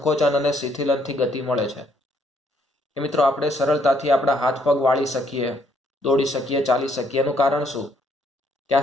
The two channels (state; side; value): normal; both; correlation 0.69